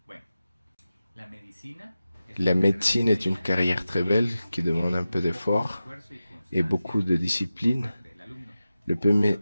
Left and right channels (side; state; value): both; inverted; correlation -0.94